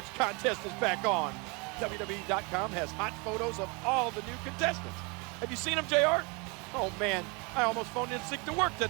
contest is back on. WWE.com has hot photos of all the new contestants. Have you seen them, JR? Oh man, I almost phoned in sick to work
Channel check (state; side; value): quieter; left; 29.8 dB